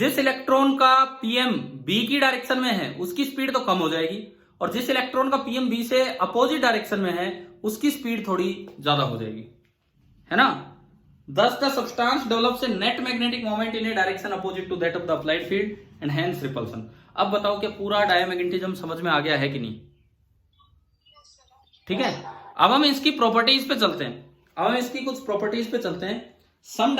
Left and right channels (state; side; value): identical; both; correlation 1.00